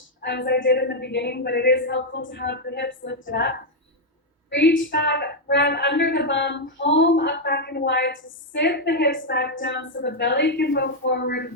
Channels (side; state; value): both; normal; correlation 0.00